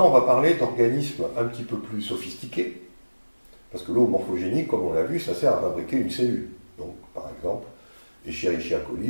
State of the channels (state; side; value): inverted; both; correlation -1.00